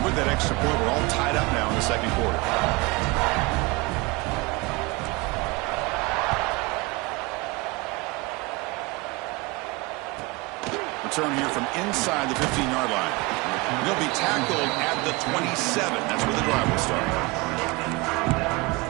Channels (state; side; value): quieter; left; 24.5 dB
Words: with that extra point, we're all tied up now in the second quarter. Return here from inside the 15-yard line. He'll be tackled at the 27. That's where the drive will start.